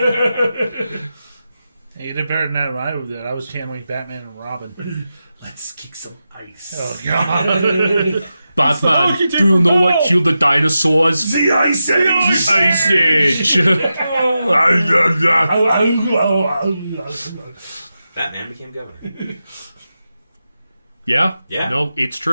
Hey, you did better than that. I did. I was channeling Batman and Robin. Let's kick some ice. Oh God! Batman, do you know what killed the dinosaurs? The Ice Age. The Ice Age. Batman became governor. Yeah? Yeah. No, it's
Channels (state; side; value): inverted; both; correlation -0.90